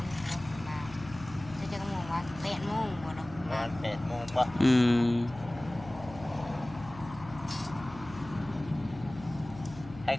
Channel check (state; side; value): noise; left; hum, 16 dB below the sound